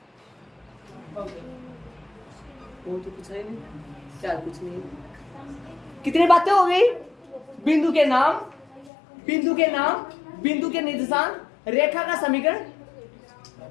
वो तो कुछ है नहीं, क्या कुछ नहीं। कितनी बातें हो गई? बिंदु के नाम, बिंदु के नाम, बिंदु के निर्देशांक, रेखा का समीकरण,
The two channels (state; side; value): drops out; right; at 8.9 s